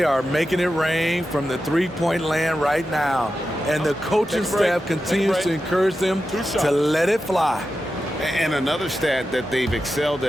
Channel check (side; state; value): both; normal; correlation 0.91